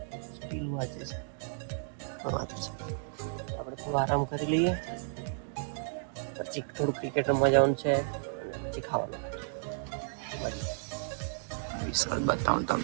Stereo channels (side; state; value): left; silent; digital silence